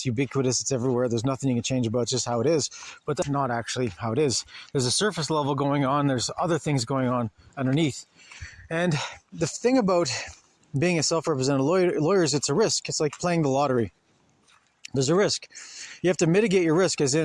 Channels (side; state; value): both; identical; correlation 1.00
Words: ubiquitous, it's everywhere, there's nothing you can change about, it's just how it is. But that's not actually how it is. There's a surface level going on, there's other things going on underneath. And the thing about being a self-represented lawyer is it's a risk. It's like playing the lottery. There's a risk. You have to mitigate your risk, as